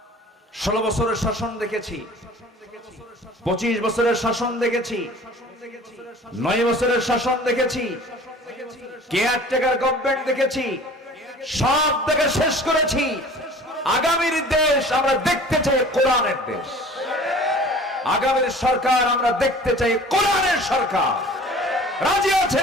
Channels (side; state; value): both; normal; correlation 0.45